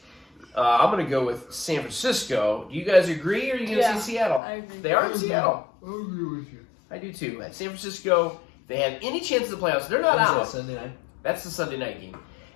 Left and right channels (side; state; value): right; drops out; at 4.4 s